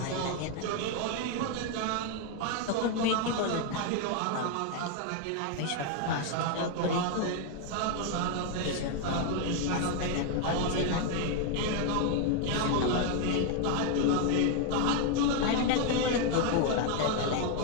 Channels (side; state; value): both; different; correlation 0.01